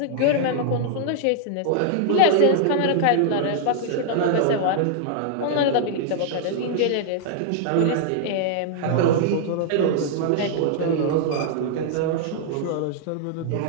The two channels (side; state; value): both; different; correlation -0.01